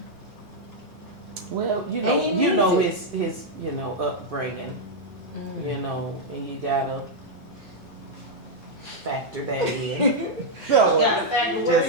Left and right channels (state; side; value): normal; both; correlation -0.03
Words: Well, you And know, he you know needs his upbringing. Mm. You know, and you gotta factor that in. Gotta factor what Just